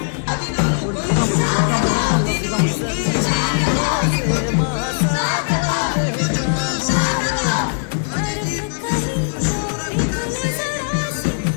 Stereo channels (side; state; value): right; silent; 66 dB below the other